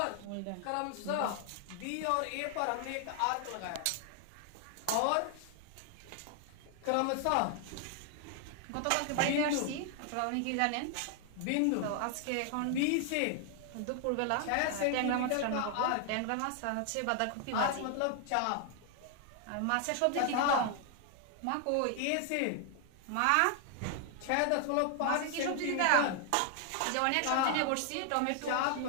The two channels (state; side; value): different; both; correlation 0.00